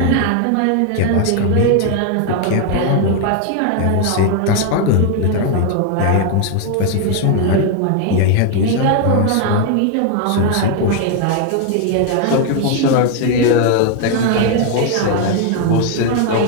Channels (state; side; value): different; both; correlation 0.00